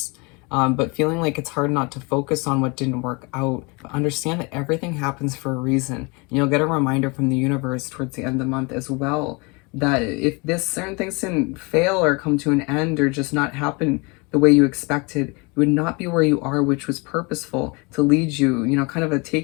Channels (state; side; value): quieter; right; 28.9 dB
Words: But feeling like it's hard not to focus on what didn't work out, but understand that everything happens for a reason. And you'll get a reminder from the universe towards the end of the month as well, that if this certain things didn't fail or come to an end or just not happen the way you expected, you would not be where you are, which was purposeful to lead you, you know, kind of